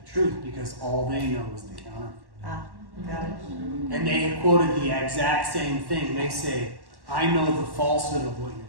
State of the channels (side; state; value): left; late; 1.1 ms